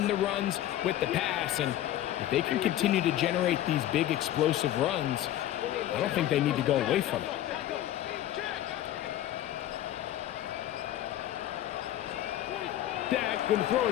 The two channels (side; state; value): right; quieter; 12.9 dB